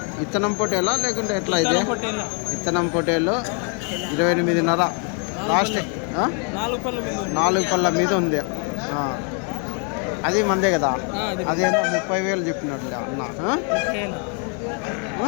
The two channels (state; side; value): quieter; right; 39.7 dB